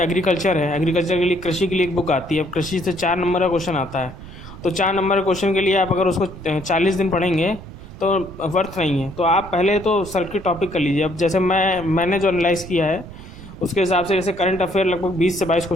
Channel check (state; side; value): noise; right; rumble, 15 dB below the sound